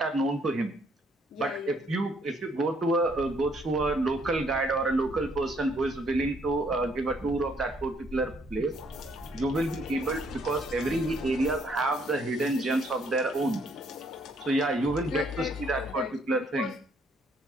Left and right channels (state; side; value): normal; both; correlation 0.67